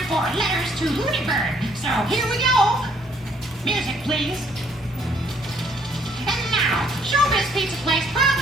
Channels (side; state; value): left; noise; rumble, 25 dB below the sound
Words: for Letters to Looney Bird. So, here we go. Music, please. And now, Showbiz Pizza Place